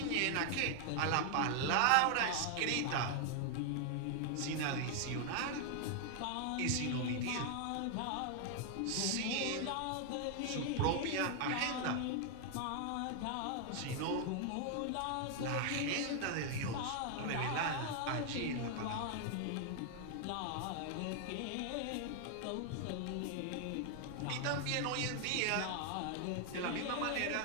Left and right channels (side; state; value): both; different; correlation 0.00